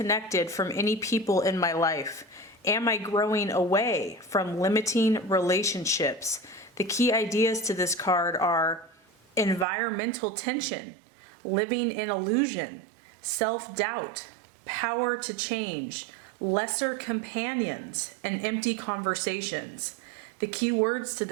from any people in my life? Am I growing away from limiting relationships? The key ideas to this card are environmental tension, living in illusion, self-doubt, power to change, lesser companions, and empty conversations. The key words to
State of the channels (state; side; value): drops out; left; at 9.7 s